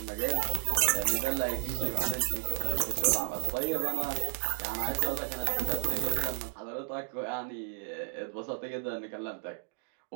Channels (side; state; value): left; silent; 56 dB below the other